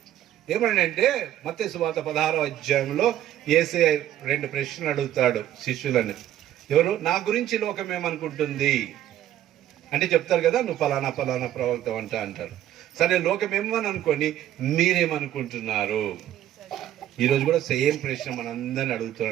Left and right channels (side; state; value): left; quieter; 12.2 dB